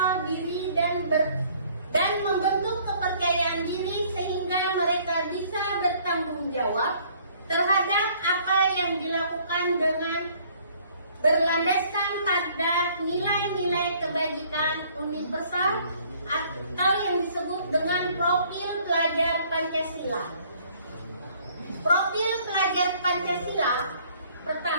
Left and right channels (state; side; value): inverted; both; correlation -0.59